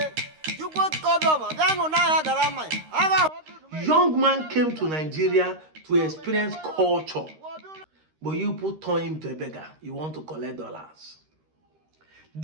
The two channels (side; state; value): left; late; 13 ms